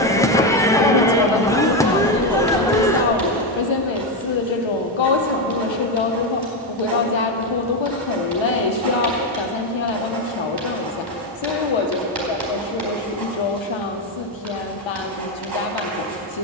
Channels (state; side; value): normal; both; correlation 0.09